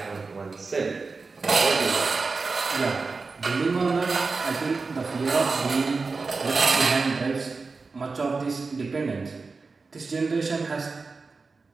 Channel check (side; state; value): left; quieter; 4.2 dB